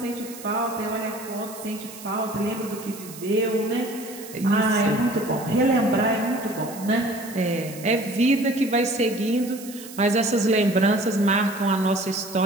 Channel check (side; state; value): right; noise; hiss, 15 dB below the sound